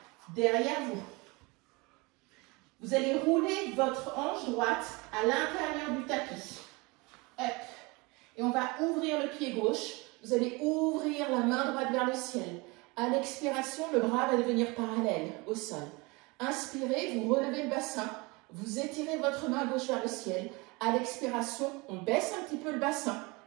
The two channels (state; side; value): quieter; left; 25.7 dB